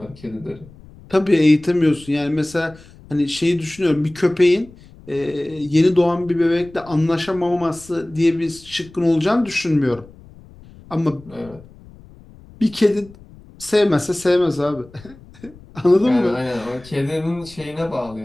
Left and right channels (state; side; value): noise; left; rumble, 22 dB below the sound